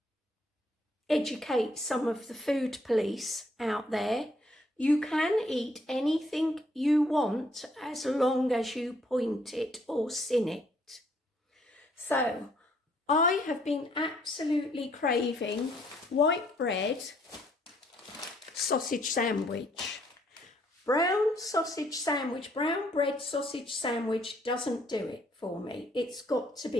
educate some of the food police out there. You can eat anything you want as long as you point it or sin it. So I have been absolutely craving white bread sausage sandwich. Brown bread sausage sandwich doesn't do it for me. It's got to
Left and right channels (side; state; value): both; normal; correlation 0.67